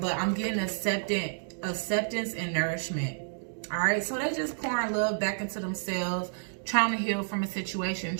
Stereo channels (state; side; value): silent; left; digital silence